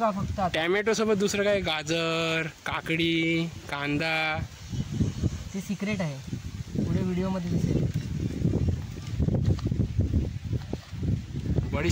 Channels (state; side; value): identical; both; correlation 1.00